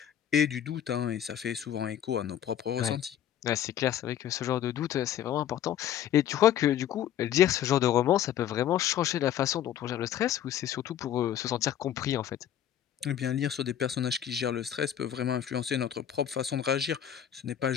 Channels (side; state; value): right; quieter; 10.4 dB